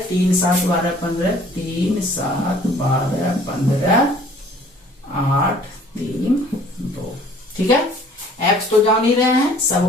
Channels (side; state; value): both; normal; correlation 0.54